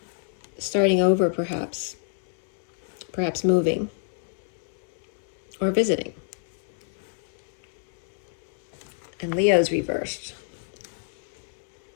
Starting over, perhaps. Perhaps moving. Or visiting. And Leo's reversed.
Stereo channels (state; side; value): silent; right; 57 dB below the other